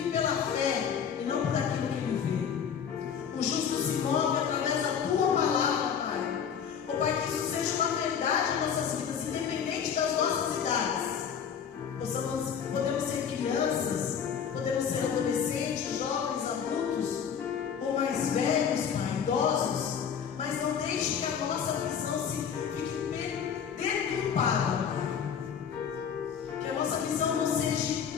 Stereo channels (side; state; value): right; quieter; 7.5 dB